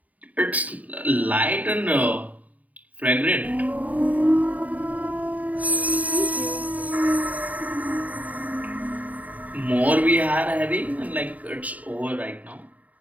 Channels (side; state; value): left; late; 0.073 ms